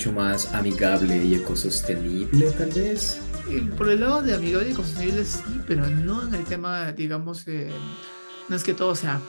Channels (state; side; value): inverted; both; correlation -1.00